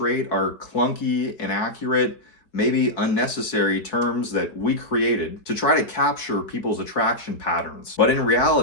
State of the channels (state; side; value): late; right; 4.5 ms